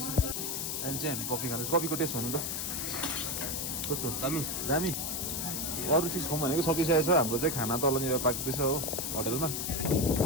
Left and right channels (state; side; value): noise; left; hiss, 2 dB below the sound